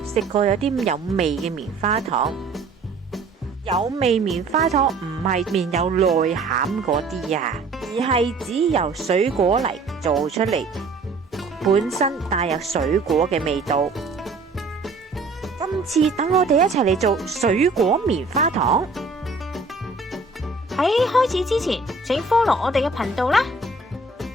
食過有啲有味嘅棉花糖。有味棉花糖唔係面有內餡嗰啲啊，而係指由水果嚟做出嚟，本身帶有水果嘅味道。今次等我哋一齊嚟做水果棉花糖。喺開始之前，請 follow 我哋嘅頻道啦。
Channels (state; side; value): quieter; left; 3.7 dB